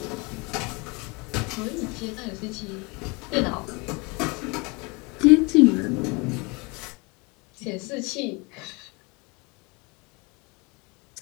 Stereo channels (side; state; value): right; quieter; 28.5 dB